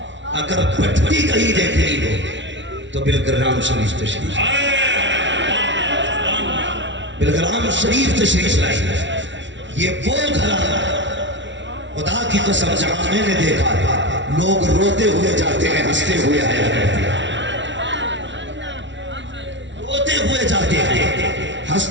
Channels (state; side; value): late; left; 0.54 ms